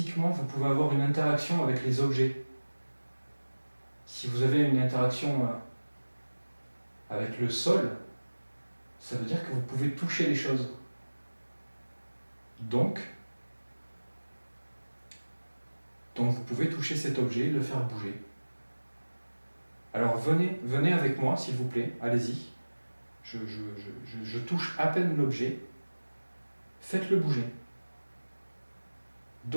vous pouvez avoir une interaction avec les objets. Si vous avez une interaction avec le sol, ça veut dire que vous pouvez toucher les choses. Donc vous pouvez toucher cet objet, le faire bouger. Alors venez avec moi, s'il vous plaît, allez-y. Je touche à peine l'objet. Faites-le bouger.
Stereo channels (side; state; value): both; inverted; correlation -1.00